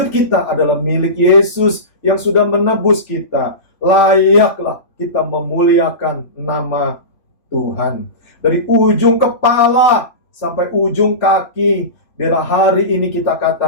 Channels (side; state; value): right; late; 3.5 ms